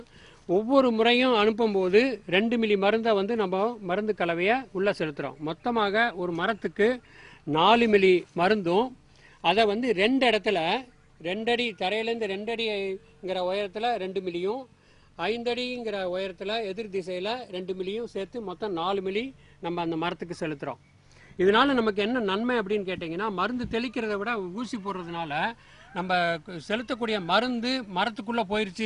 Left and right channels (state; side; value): identical; both; correlation 1.00